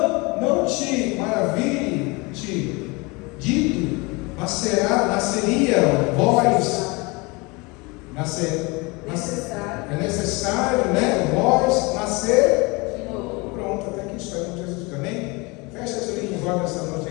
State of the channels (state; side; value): quieter; right; 26.5 dB